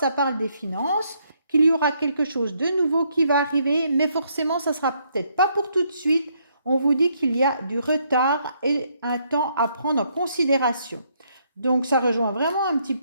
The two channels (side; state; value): both; inverted; correlation -0.72